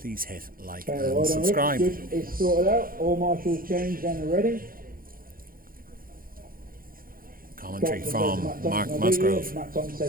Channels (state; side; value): late; left; 0.42 ms